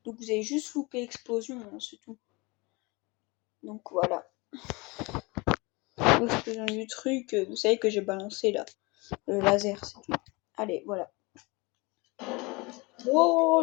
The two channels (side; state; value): right; quieter; 25.9 dB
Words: Donc vous avez juste loupé l'explosion, hein, c'est tout. Donc voilà. L'explosion du truc, vous savez que j'ai balancé là, le laser, c'est tout. Allez, voilà.